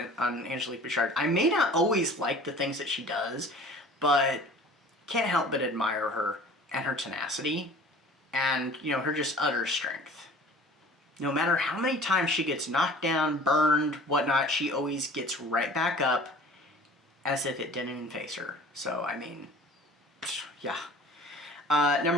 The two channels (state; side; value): normal; both; correlation 0.46